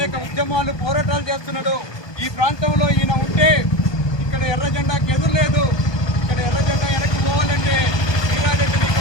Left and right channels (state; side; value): late; right; 1.2 ms